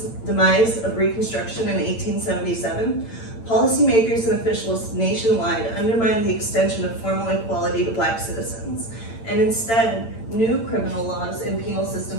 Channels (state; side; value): late; right; 8.9 ms